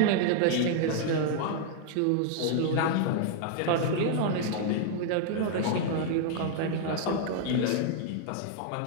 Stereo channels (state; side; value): different; both; correlation 0.00